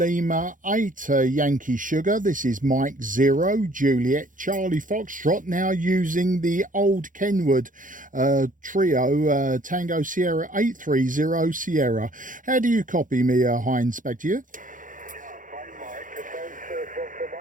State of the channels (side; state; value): left; late; 0.38 ms